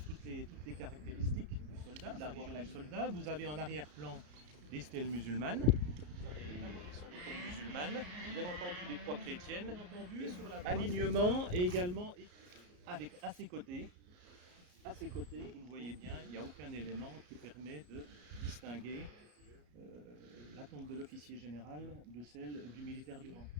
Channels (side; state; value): left; late; 34 ms